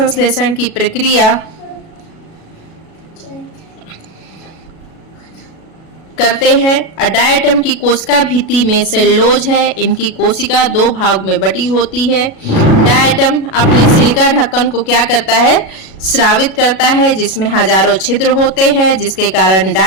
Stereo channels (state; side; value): late; right; 37 ms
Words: की प्रक्रिया करते हैं। डायटम की कोशिका भित्ति में सेल्यूलोज है। इनकी कोशिका 2 भाग में बटी होती है। डायटम अपने सिलिका ढक्कन को क्या करता है? स्रावित करता है, जिसमें हजारों छिद्र होते हैं, जिसके कारण